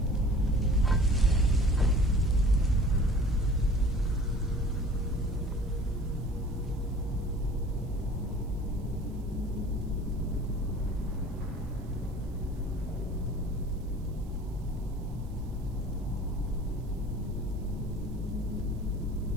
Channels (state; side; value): noise; right; hiss, 29 dB below the sound